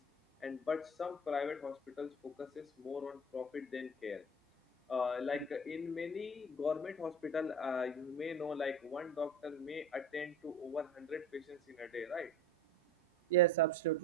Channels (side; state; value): both; normal; correlation 0.36